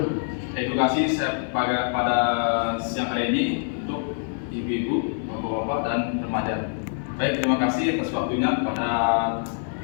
Edukasi saya pada siang hari ini untuk ibu-ibu, bapak-bapak, dan remaja. Baik, terima kasih atas waktunya kepada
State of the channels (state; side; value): silent; right; digital silence